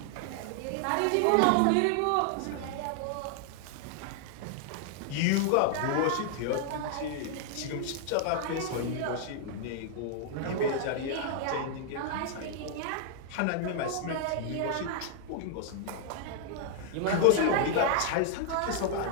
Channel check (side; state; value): both; different; correlation 0.00